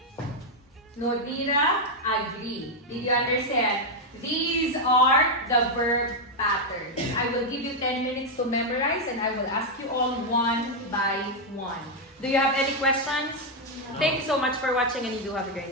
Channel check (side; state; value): both; normal; correlation 0.01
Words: Nodira agree. Did you understand? These are the verb patterns. I will give you 10 minutes to memorize and I will ask you all one by one. Do you have any questions? Thank you so much for watching and you do have a